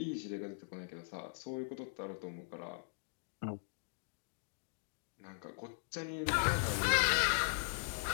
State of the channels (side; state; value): right; silent; digital silence